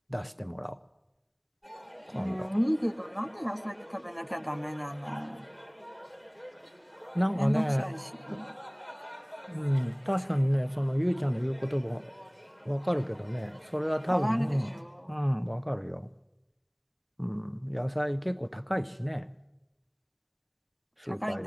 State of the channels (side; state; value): both; identical; correlation 1.00